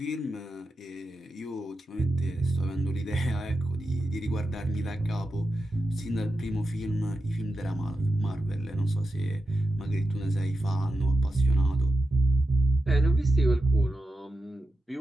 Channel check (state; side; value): normal; both; correlation 0.90